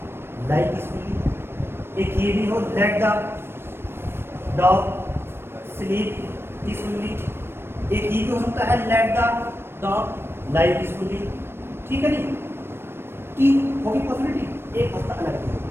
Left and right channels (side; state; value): left; late; 0.12 ms